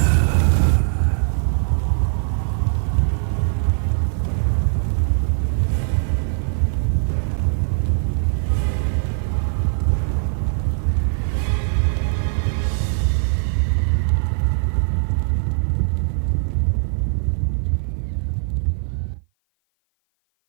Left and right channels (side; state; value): left; silent; 55 dB below the other